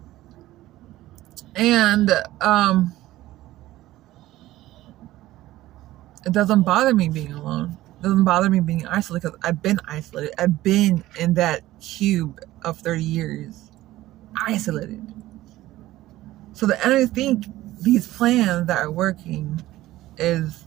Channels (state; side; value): quieter; left; 15.9 dB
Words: and it doesn't bother me being alone. It doesn't bother me being isolated because I've been isolated. I've been in that cube of 30 years, isolated. So the enemy think these plans that are working is